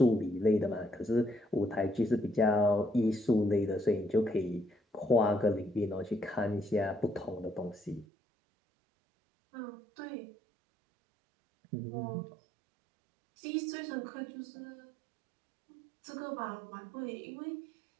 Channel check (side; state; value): left; drops out; at 8.1 s